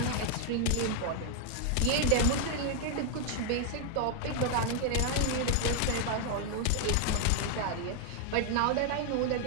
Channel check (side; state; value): both; different; correlation 0.00